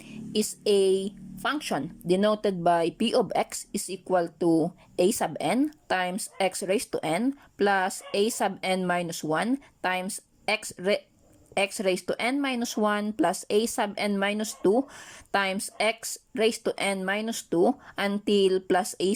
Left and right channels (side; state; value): both; identical; correlation 1.00